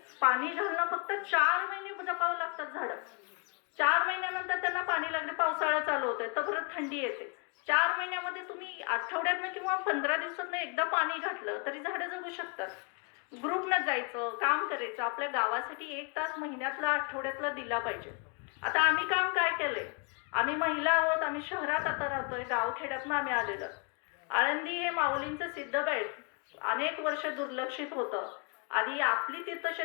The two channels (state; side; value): quieter; right; 34.8 dB